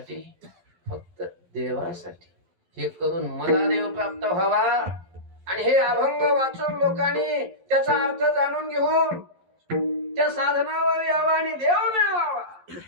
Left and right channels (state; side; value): late; left; 11 ms